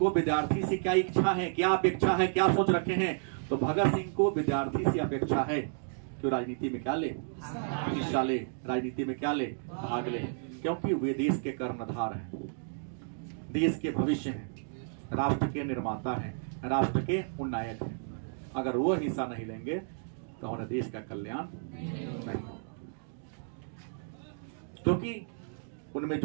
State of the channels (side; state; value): left; silent; digital silence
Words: विद्यार्थी से क्या इच्छा है, क्या अपेक्षा है, क्या सोच रखे हैं। तो भगत सिंह को विद्यार्थी से अपेक्षा है कि राजनीति में क्या ले, हिस्सा ले, राजनीति में क्या ले, भाग ले, क्योंकि वे देश के कर्णधार हैं, देश के भविष्य हैं, राष्ट्र के निर्माता हैं, राष्ट्र के उन्नायक हैं। अगर वो हिस्सा नहीं लेंगे तो हमारे देश का कल्याण नहीं होगा, क्योंकि उनमें